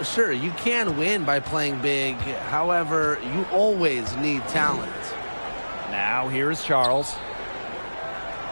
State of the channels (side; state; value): both; inverted; correlation -1.00